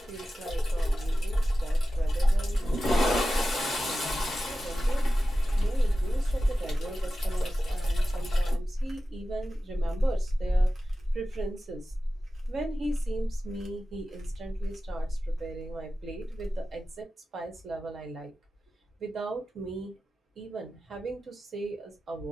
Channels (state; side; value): normal; both; correlation 0.94